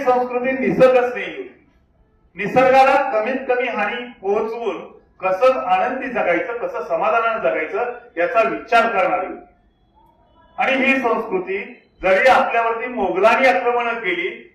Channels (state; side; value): identical; both; correlation 1.00